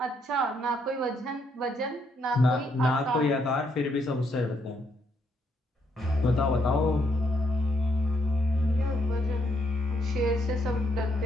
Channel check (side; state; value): both; normal; correlation 0.74